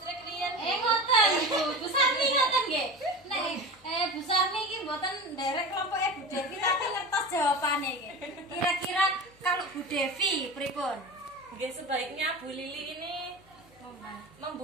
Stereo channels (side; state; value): left; noise; hum, 30 dB below the sound